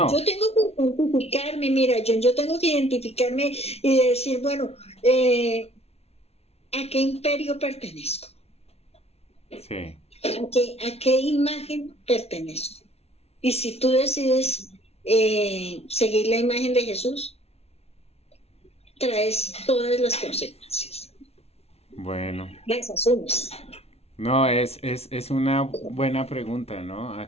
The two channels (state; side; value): late; right; 0.30 ms